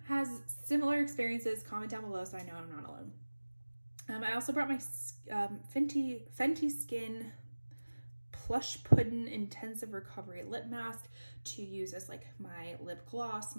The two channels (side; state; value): both; inverted; correlation -1.00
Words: has similar experiences, comment down below so I know I'm not alone. I also brought my Fenty Skin Plush Puddin' Intensive Recovery Lip Mask to use as like my lip gloss,